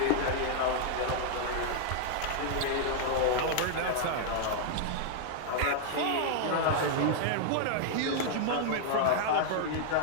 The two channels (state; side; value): different; both; correlation -0.01